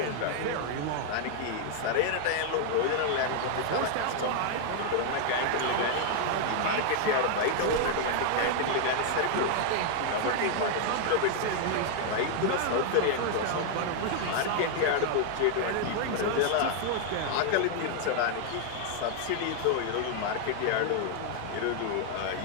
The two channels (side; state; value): both; different; correlation 0.00